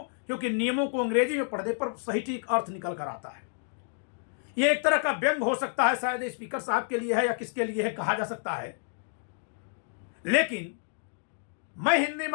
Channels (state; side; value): silent; right; 58 dB below the other